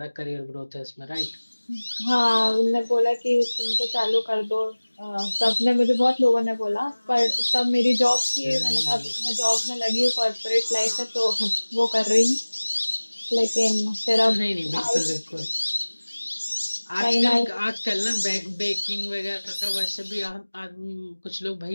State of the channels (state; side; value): inverted; both; correlation -1.00